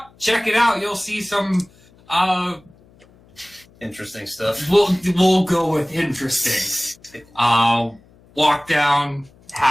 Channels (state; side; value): noise; left; hum, 29 dB below the sound